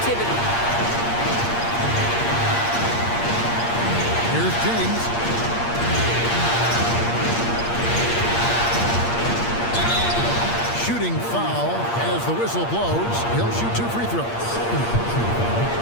Here's James. Shooting foul as the whistle blows. He'll shoot 2 free throws.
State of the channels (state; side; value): late; right; 8.6 ms